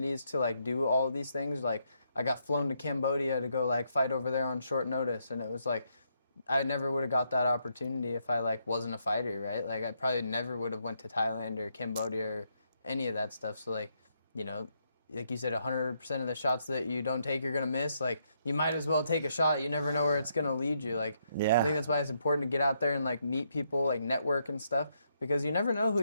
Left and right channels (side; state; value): both; inverted; correlation -0.77